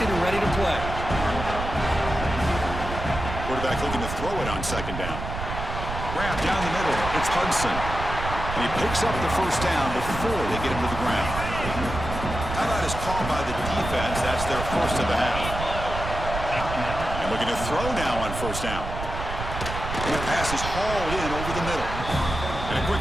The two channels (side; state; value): right; noise; rumble, 6 dB below the sound